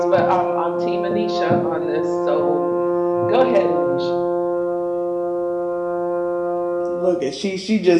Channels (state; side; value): identical; both; correlation 1.00